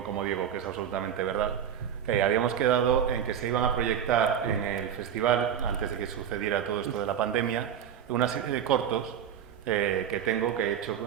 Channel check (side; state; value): left; quieter; 8.9 dB